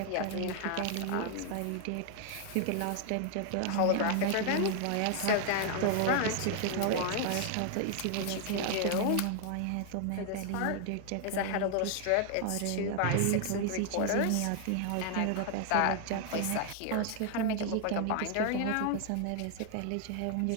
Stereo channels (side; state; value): both; different; correlation 0.00